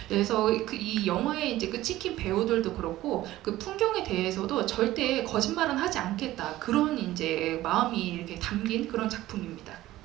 그래서 이 영화에 이제 그 찍힌 배우들도 그렇고 그 풍경에 대해서도 절대 거짓말은 하지 않겠다, 그런 이제 마음이 이렇게 담긴 그런 작품입니다.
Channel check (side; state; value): left; quieter; 15.7 dB